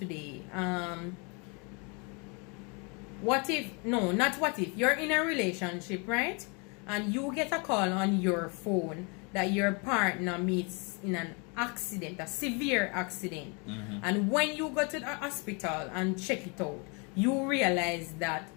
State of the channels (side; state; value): right; quieter; 32.7 dB